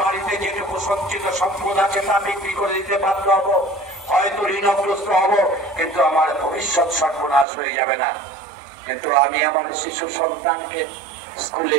বাড়িতে যেটুকু সঞ্চিত সম্পদ আছে তা বিক্রি করে দিতে বাধ্য হবো, হয়তো ঋণগ্রস্ত হব, কিন্তু আমার ভবিষ্যৎ সর্বনাশ হয়ে যাবে না। কিন্তু আমি আমার শিশু সন্তানকে স্কুলে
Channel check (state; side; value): drops out; left; at 7.5 s